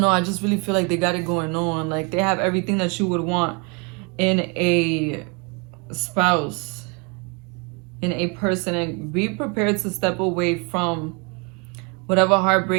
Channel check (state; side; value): quieter; left; 32.5 dB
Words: I just really feel like they got it going on. Like they have everything that you would want in a spouse, in a person. And be prepared to step away from whatever